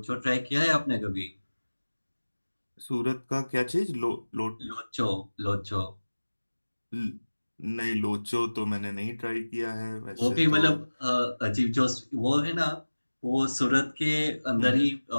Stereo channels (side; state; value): both; inverted; correlation -1.00